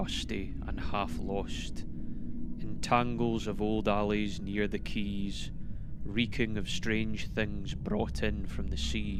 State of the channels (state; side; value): identical; both; correlation 1.00